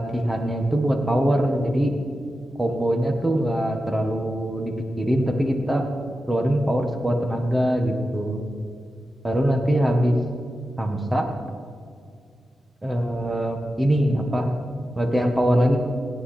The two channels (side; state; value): both; normal; correlation 0.91